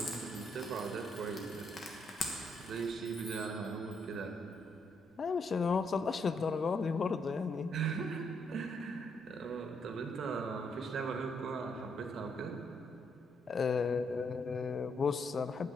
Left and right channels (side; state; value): both; normal; correlation 0.75